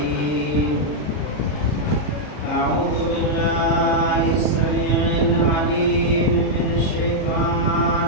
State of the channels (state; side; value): late; right; 33 ms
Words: أعوذ بالله السميع العليم من